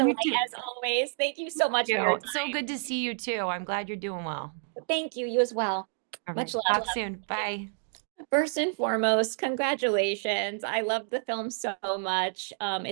me delight too. as always. Thank you so much for your So time. good to see you too. I'm glad you're doing well. Thank you. You as well. All Much right. love. Talk soon. Bye. First and foremost, congratulations. I love the film so much.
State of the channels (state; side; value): silent; left; digital silence